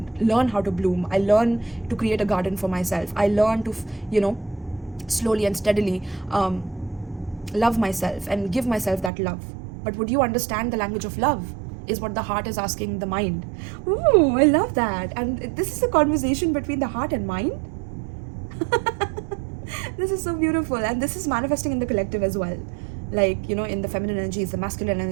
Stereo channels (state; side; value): drops out; left; at 9.1 s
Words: learn how to bloom. I learn to create a garden for myself. I learn to, slowly and steadily love myself and give myself that love. But would you understand the language of love? Is what the heart is asking the mind. Ooh, I love that. And this is a conversation between the heart and mind. This is so beautiful, and this is manifesting in the collective as well, like in the feminine energies, the